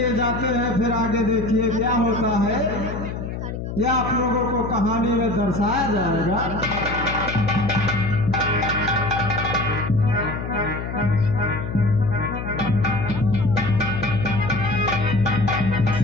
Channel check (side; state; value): left; noise; hum, 6 dB below the sound